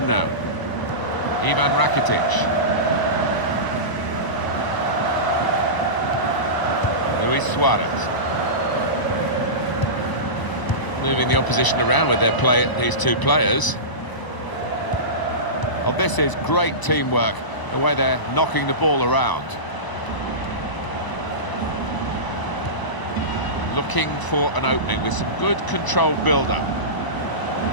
now. Ivan Rakitic. Luis Suarez. Moving the opposition around with these two players. Oh, this is great teamwork, the way they're knocking the ball around. Looking for an opening with some good controlled build-up.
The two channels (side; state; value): right; late; 1.0 ms